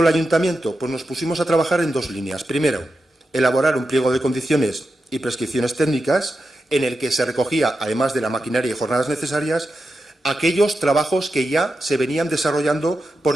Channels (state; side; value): normal; both; correlation 0.89